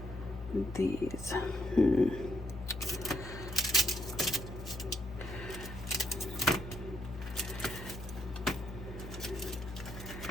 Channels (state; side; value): noise; left; hum, 11 dB below the sound